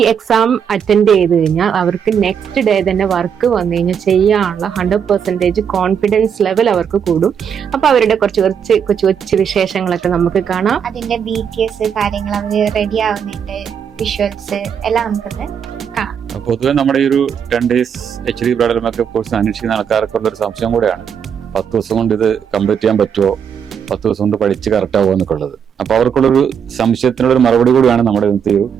എക്സാം അറ്റൻഡ് ചെയ്ത് കഴിഞ്ഞാൽ അവർക്ക് നെക്സ്റ്റ് ഡേ തന്നെ വർക്ക് വന്നു കഴിഞ്ഞാൽ ചെയ്യാനുള്ള 100% കോൺഫിഡൻസ് ലെവൽ അവർക്ക് കൂടും. അപ്പൊ അവരുടെ കുറച്ച് വിശേഷങ്ങളൊക്കെ നമുക്ക് കാണാം. അതിന്റെ BTS കാര്യങ്ങൾ, അവർ റെഡി ആവുന്നതിന്റെ വിഷ്വൽസ് എല്ലാം നമുക്കൊന്ന് കാണാം. പൊതുവെ നമ്മുടെ ഈ ഒരു 10 days HD bridal makeup course അന്വേഷിക്കുന്ന ആൾക്കാർക്കുള്ള ഒരു സംശയം കൂടെയാണ്, 10 ദിവസം കൊണ്ട് ഇത് കംപ്ലീറ്റ് ചെയ്യാൻ പറ്റുമോ, 10 ദിവസം കൊണ്ട് പഠിച്ച് കറക്റ്റ് ആവുമോ എന്നൊക്കെ ഉള്ളത്. അപ്പൊ അവർക്കുള്ളൊരു സംശയത്തിനുള്ള ഒരു മറുപടി കൂടിയാണ് നമ്മുടെ ഇന്നത്തെ ഒരു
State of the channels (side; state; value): left; quieter; 7.6 dB